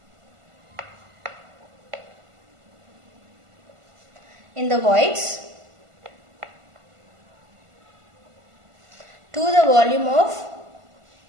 in the voids to the volume of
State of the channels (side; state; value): left; late; 1.5 ms